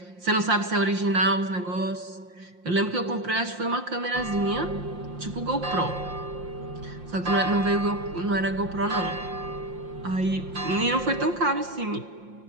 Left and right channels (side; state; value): left; late; 5.7 ms